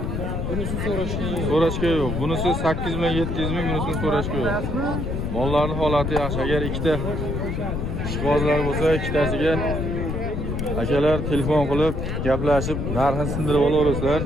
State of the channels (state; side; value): noise; left; rumble, 2 dB below the sound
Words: Bunisi So'rashga yo'q. Bunisi 8 million 700 ming, bunisini so'rashga yo'q. Mollarning holati yaxshi. Agar ikkita ishqibozlar bo'lsa, ikkitasiga akalar telefon qilib, gaplashib, narxini sindirib olaverasizlar.